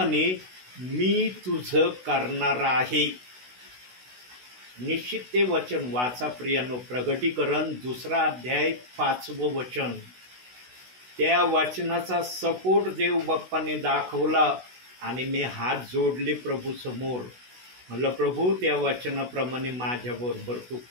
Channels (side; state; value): left; late; 16 ms